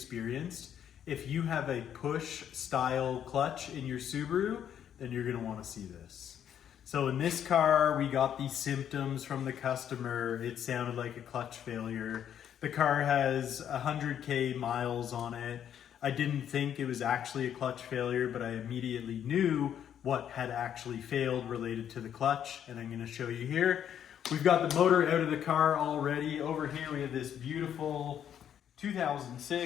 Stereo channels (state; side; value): quieter; right; 9.5 dB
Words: If you have a push style clutch in your Subaru, then you're gonna wanna see this. So in this car, we got these symptoms from the customer. It sounded like a clutch failure. The car has 100K miles on it. I didn't think it was actually a clutch failure, but I immediately knew what had actually failed related to the clutch, and I'm gonna show you here. We've got the motor out of the car already. Over here we have this beautiful